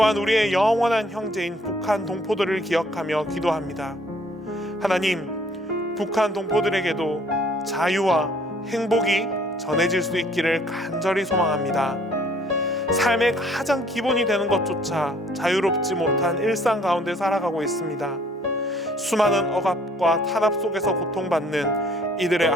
우리의 영원한 형제인 북한 동포들을 기억하며 기도합니다. 하나님, 북한 동포들에게도 자유와 행복이 전해질 수 있기를 간절히 소망합니다. 삶의 가장 기본이 되는 것조차 자유롭지 못한 일상 가운데 살아가고 있습니다. 수많은 억압과 탄압 속에서 고통받는 이들의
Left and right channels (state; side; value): normal; both; correlation 0.60